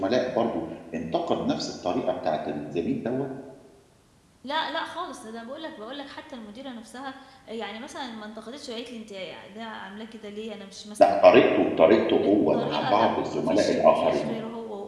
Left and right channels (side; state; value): both; identical; correlation 1.00